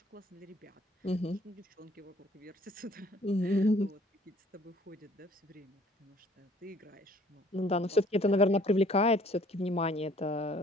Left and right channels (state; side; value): normal; both; correlation 0.57